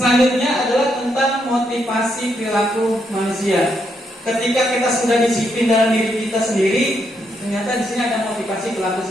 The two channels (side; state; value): both; normal; correlation 0.78